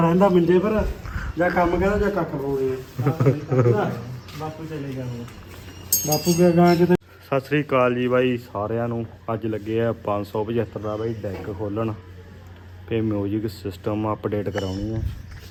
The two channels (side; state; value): both; identical; correlation 1.00